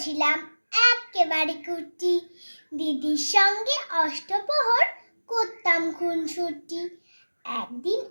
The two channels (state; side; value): inverted; both; correlation -1.00